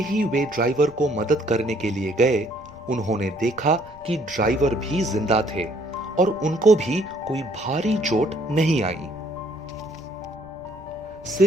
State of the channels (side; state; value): left; noise; rumble, 23 dB below the sound